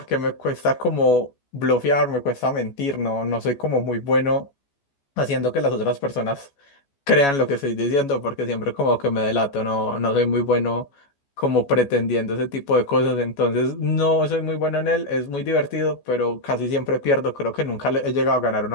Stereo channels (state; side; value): late; right; 14 ms